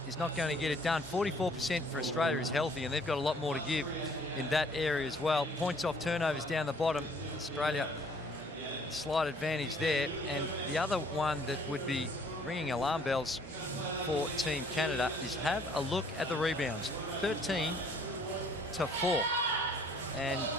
is not going to get it done. 44% for Australia is healthy, and they've got a lot more to give in that area as well. Points off turnovers down the bottom. Australia, slight advantage there. And the other one that would be ringing alarm bells for Team Canada is have a look at the rebounds. 13-4. And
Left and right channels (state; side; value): normal; both; correlation 0.59